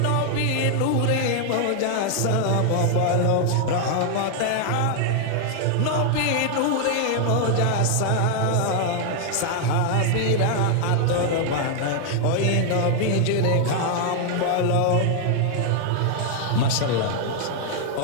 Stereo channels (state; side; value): different; both; correlation 0.00